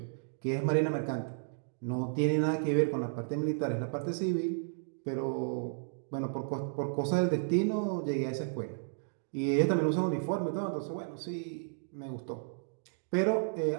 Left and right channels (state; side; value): silent; left; digital silence